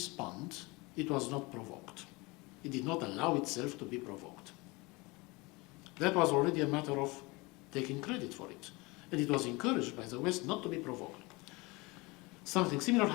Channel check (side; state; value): right; quieter; 24.8 dB